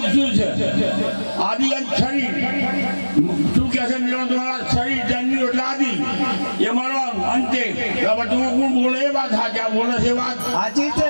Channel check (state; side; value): inverted; both; correlation -1.00